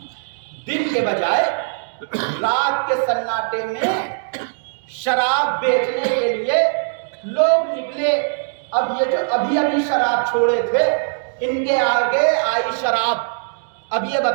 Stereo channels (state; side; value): silent; left; digital silence